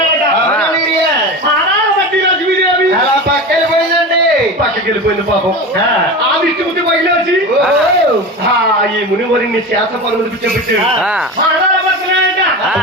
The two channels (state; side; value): normal; both; correlation 0.27